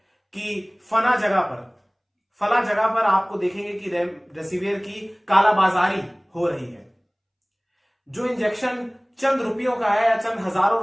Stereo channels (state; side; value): identical; both; correlation 1.00